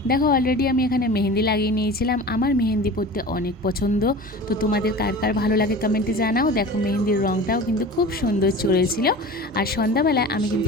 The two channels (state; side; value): normal; both; correlation 0.36